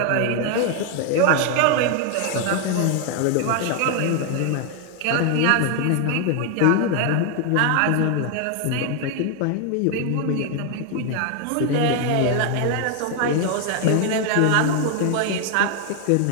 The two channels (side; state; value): both; different; correlation 0.00